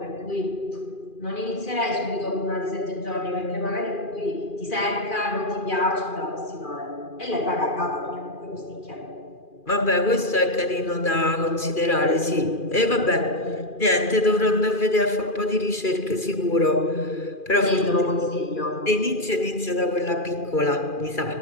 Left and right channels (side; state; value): right; late; 2.4 ms